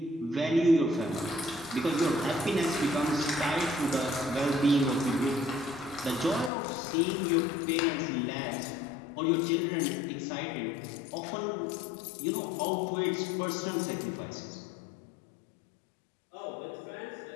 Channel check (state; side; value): drops out; right; at 6.5 s